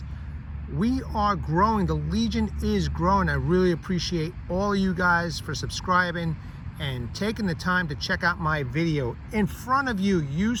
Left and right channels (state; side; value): identical; both; correlation 1.00